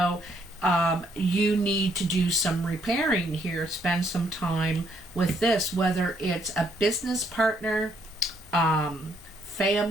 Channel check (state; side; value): normal; both; correlation 0.70